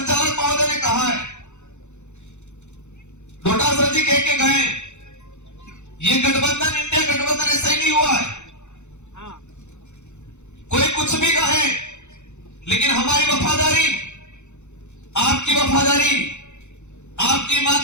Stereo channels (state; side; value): late; right; 0.83 ms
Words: महोदय ने कहा है डोटासर जी कह के गए ये गठबंधन इंडिया गठबंधन ऐसा ही नहीं हुआ है कोई कुछ भी कहे लेकिन हमारी वफादारी आपकी वफादारी आपकी